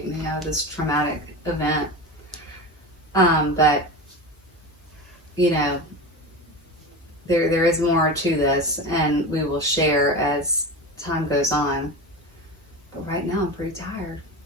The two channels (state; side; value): normal; both; correlation 0.26